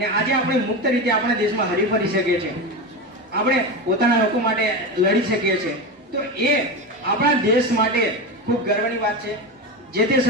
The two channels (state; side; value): normal; both; correlation 0.20